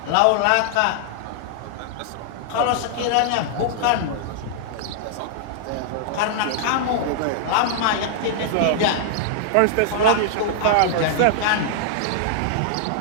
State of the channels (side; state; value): both; different; correlation -0.01